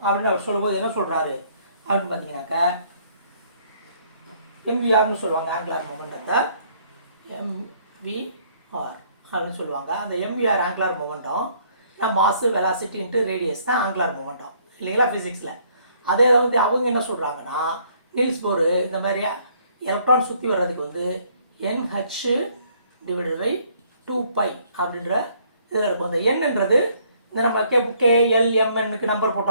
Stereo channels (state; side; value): inverted; both; correlation -0.64